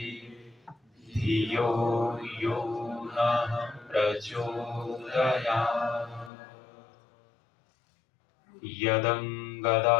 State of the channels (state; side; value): drops out; right; at 6.3 s